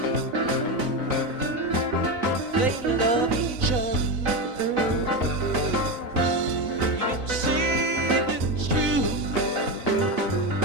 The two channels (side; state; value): left; late; 4.0 ms